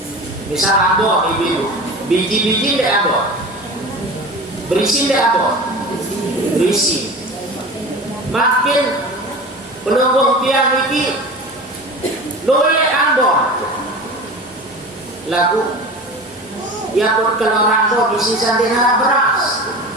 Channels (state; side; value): normal; both; correlation 0.34